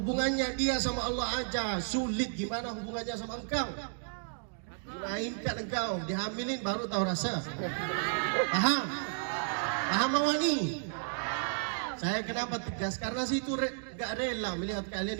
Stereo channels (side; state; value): left; silent; digital silence